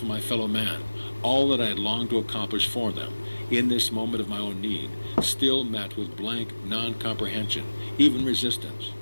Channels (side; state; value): both; inverted; correlation -1.00